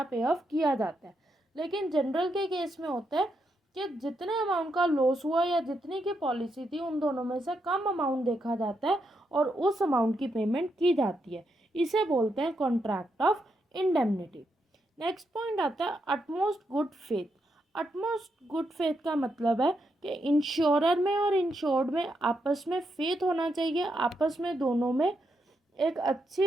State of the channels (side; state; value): both; normal; correlation 0.81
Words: पे ऑफ किया जाता है। लेकिन जनरल के केस में होता है कि जितने अमाउंट का लॉस हुआ या जितनी की पॉलिसी थी, उन दोनों में से कम अमाउंट देखा जाता है और उस अमाउंट की पेमेंट की जाती है। इसे बोलते हैं contract of indemnity. Next point आता है utmost good faith. Utmost good faith का मतलब है कि इंश्योरर में और इंश्योर्ड में आपस में फेथ होना चाहिए, आपस में दोनों में एक